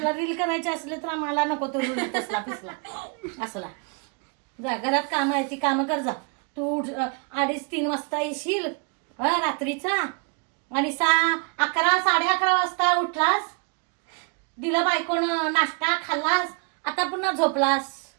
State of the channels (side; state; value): left; quieter; 35.6 dB